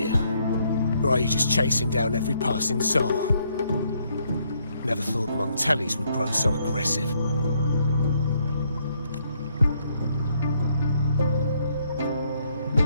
Or are you just chasing down every passing soul? Never thought the Montellis would grow so aggressive.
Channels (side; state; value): both; inverted; correlation -0.71